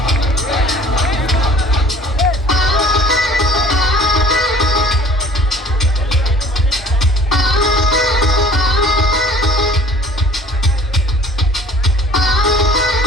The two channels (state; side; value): normal; both; correlation 0.50